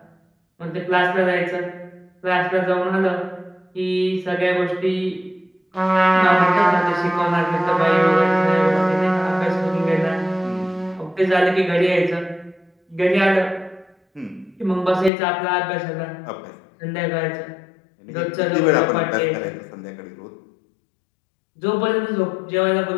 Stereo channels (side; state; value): right; drops out; at 15.1 s